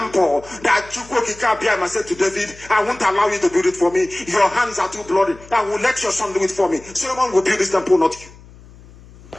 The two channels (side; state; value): left; noise; hum, 22 dB below the sound